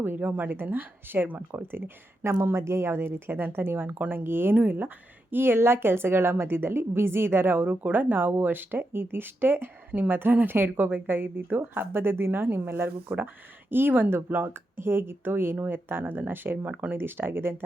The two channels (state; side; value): normal; both; correlation 0.86